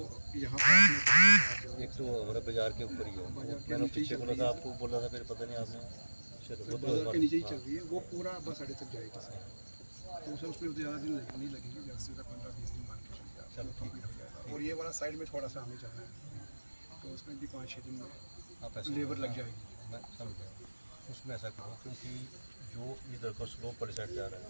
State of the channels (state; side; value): inverted; both; correlation -1.00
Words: यहाँ पर एक तो हमारे बाजार के ऊपर ही है, मैंने पीछे बोला था, आपको बोला था, फिर पता नहीं आपने, चलो बाजार के नीचे ही चल रही है, वो पूरा बस अड्डे तक जाएगी सर। तो सर उस पर ज़्यादा दिन नहीं लगेंगे, जैसे 15-20 दिन मान के चलिए, चलो कंप्लीट हो जाएगा। और ये वाला साइड में थोड़ा सा हमें चलना है, तो उसमें भी 5-6 दिन में आप ऐसा लेबर लग जाएगी। मैं समझ गया। उसमें ऐसा करो, क्योंकि जो इधर का स्लोप पर साइड जा रहा है